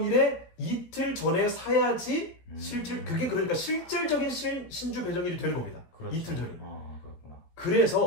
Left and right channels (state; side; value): late; right; 17 ms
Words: 이틀 전에 사야지 그게 그러니까 실질적인 신주 배정일이 되는 겁니다. 그렇죠. 이틀 전이. 그렇구나.